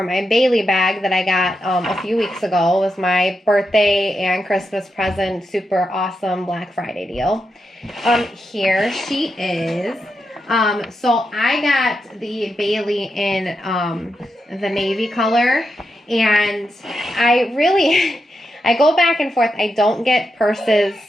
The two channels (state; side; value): normal; both; correlation 0.86